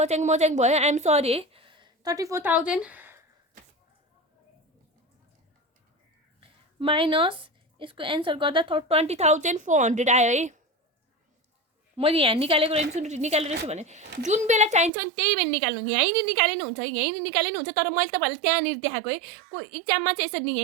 मच्याङ भयो आइएम सरी है 34,000 माइनस यसको एन्सर गर्दा 20,400 आयो है मैले यहाँ निकालेको रहेछु भने जुन बेला चाहिन्छ नि त्यही बेला निकाल्नु यहीँ नि निकाले नि हुन्छ तर मैले तपाईँहरूले त्यहाँनिर देखाएको है को इक्जाममा चाहिँ यसरी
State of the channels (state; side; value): drops out; left; at 14.9 s